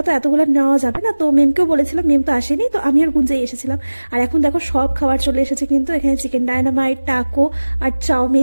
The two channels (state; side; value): inverted; both; correlation -1.00